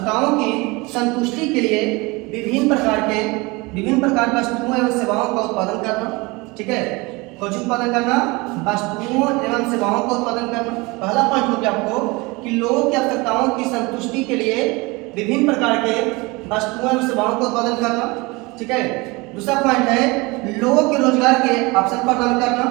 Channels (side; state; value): left; quieter; 24.7 dB